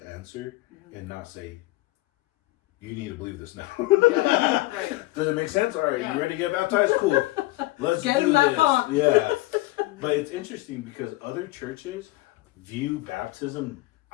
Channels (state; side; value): quieter; right; 19.6 dB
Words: answer and not say, you need to believe this now. Yeah, right. Does it make sense? All right, you ready to get baptized? Cool. Let's get do in that this. pond. Yeah. But it's interesting because other churches view baptism,